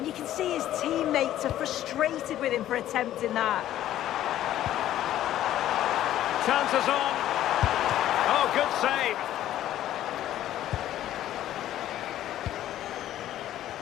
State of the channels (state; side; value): quieter; right; 12.7 dB